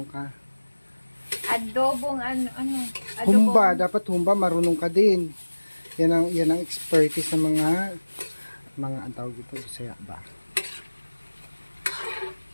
ka. Adobong ano, Humba, dapat humba, marunong ka din. Yan ang expertise ng mga ang tawag dito, Bisaya ba?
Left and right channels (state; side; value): inverted; both; correlation -1.00